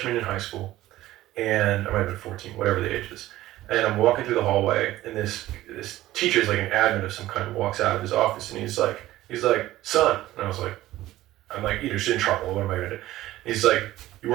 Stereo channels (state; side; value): quieter; left; 15.6 dB